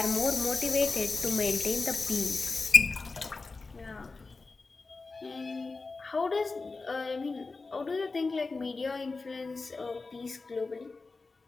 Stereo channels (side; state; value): right; quieter; 3.9 dB